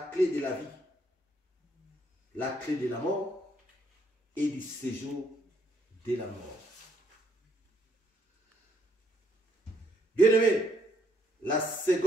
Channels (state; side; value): normal; both; correlation 0.70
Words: clé de la vie, la clé de la mort et du séjour de la mort. Bien-aimé, la